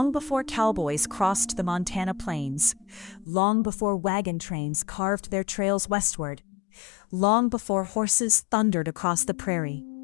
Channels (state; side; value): drops out; right; at 3.2 s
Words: before cowboys crossed the Montana plains, long before wagon trains carved their trails westward, long before horses thundered across the prairie.